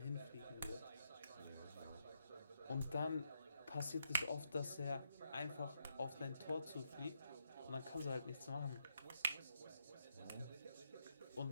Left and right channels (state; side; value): inverted; both; correlation -0.79